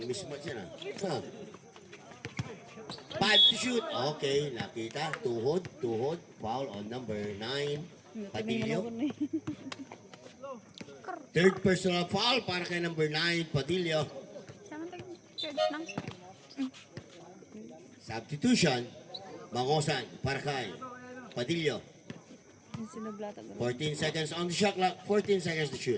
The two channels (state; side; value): identical; both; correlation 1.00